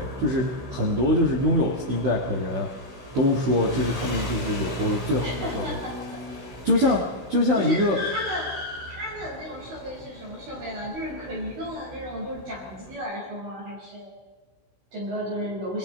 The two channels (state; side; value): late; left; 16 ms